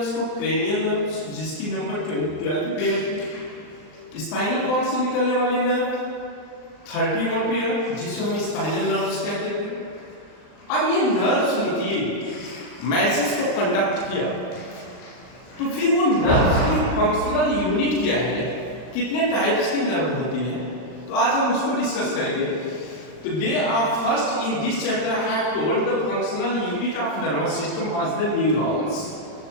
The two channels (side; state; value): right; late; 39 ms